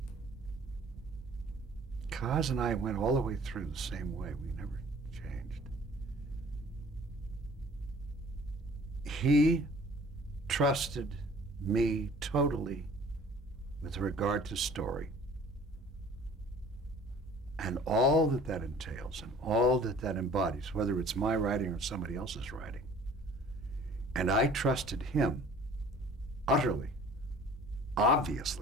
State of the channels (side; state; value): both; normal; correlation 0.49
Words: Kaz and I went all the way through the same way. We never changed. He trusted me totally with regard to story and all that that entails and all that that embodies, whether it's my writing or somebody else's writing. And I trusted him utterly,